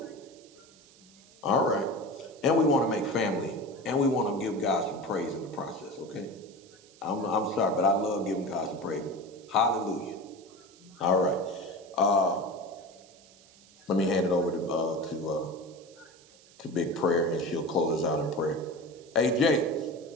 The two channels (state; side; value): noise; right; hiss, 25 dB below the sound